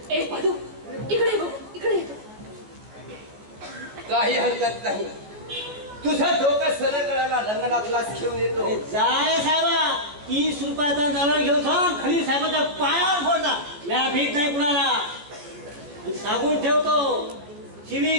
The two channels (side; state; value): left; late; 14 ms